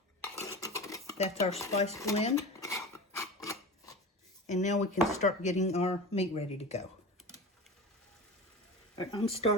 that's our spice blend. And now we can start getting our meat ready to go. All right, I'm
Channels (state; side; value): normal; both; correlation 0.31